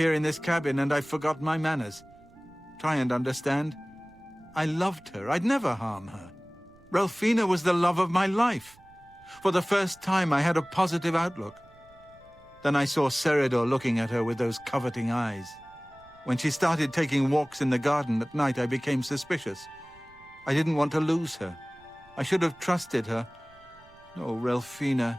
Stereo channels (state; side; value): noise; right; rumble, 27 dB below the sound